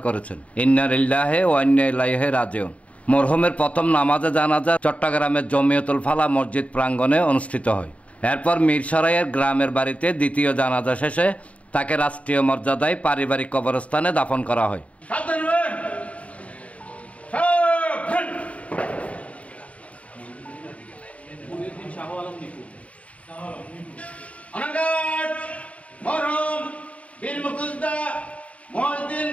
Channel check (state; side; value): late; right; 0.066 ms